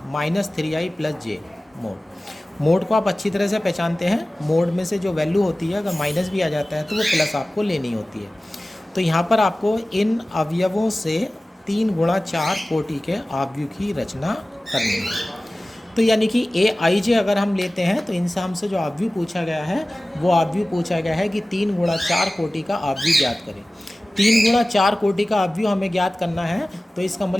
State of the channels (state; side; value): normal; both; correlation 0.97